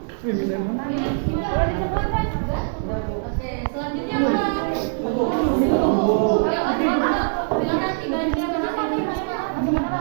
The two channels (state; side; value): silent; left; digital silence